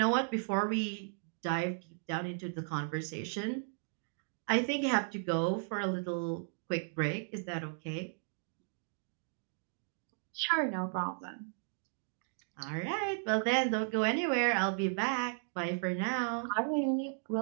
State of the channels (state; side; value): silent; left; digital silence